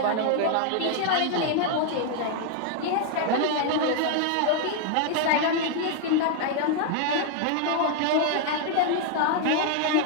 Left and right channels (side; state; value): both; different; correlation 0.00